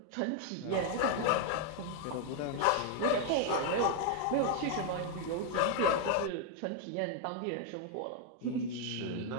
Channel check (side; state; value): both; different; correlation 0.00